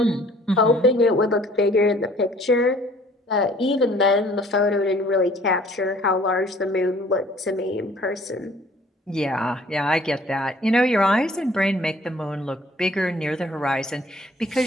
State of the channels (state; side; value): normal; both; correlation 0.55